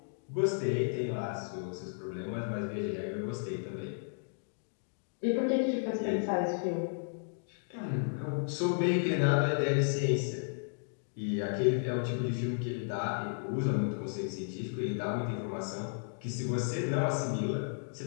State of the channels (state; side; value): silent; right; digital silence